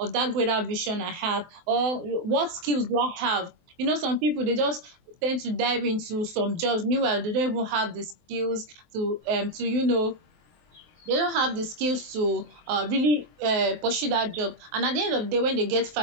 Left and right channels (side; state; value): left; late; 23 ms